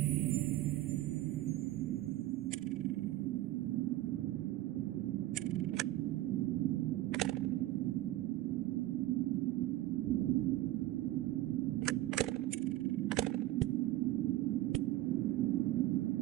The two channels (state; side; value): quieter; left; 15.6 dB